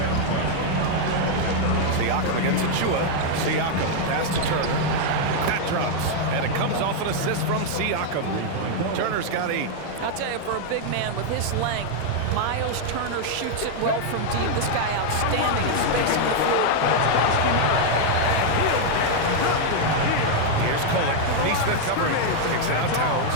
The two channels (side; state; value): both; different; correlation 0.00